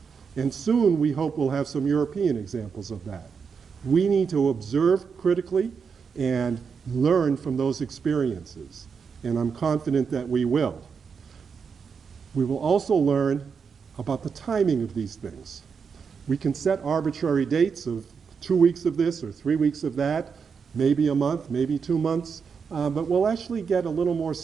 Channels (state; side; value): quieter; left; 5.9 dB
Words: And soon we hope we'll have some European examples of that. We need to observe critically and learn from those experiences. And I'm confident that we will. We will also learn about the timing of these things. We can set arbitrary dates of 2 weeks of this or 3 weeks of that, maybe a month, maybe 2 months, but we'll actually get a little more